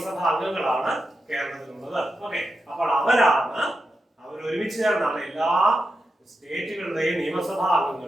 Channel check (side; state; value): both; normal; correlation 0.88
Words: അംഗങ്ങളാണ് കേരളത്തിലുള്ളത്. ഓക്കെ, അപ്പോൾ അവർ ഒരുമിച്ച് ചേർന്നാണ് എല്ലാ സ്റ്റേറ്റുകളുടെയും നിയമസഭാ